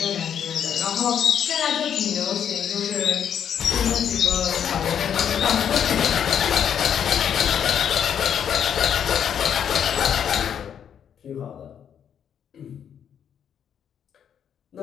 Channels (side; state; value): right; quieter; 8.6 dB